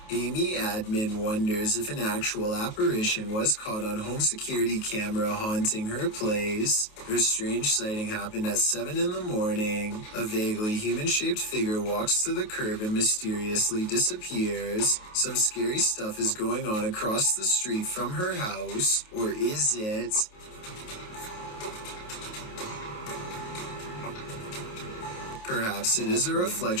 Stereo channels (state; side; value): late; right; 28 ms